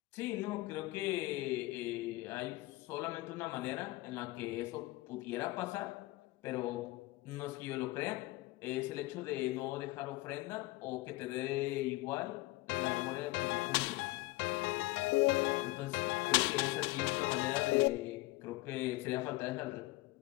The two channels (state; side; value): quieter; right; 20.3 dB